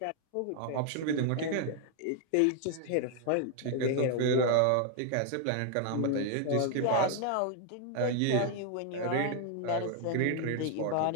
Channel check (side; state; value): both; different; correlation 0.00